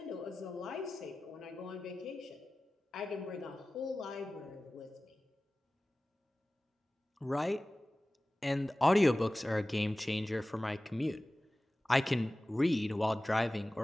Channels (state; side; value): normal; both; correlation 0.97